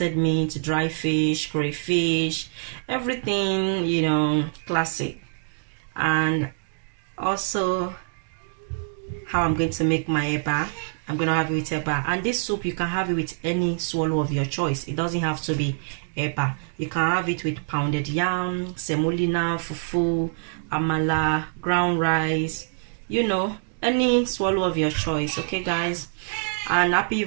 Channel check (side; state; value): left; silent; digital silence